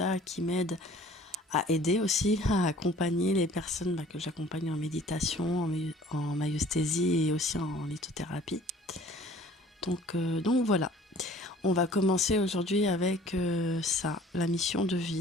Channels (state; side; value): normal; both; correlation 0.51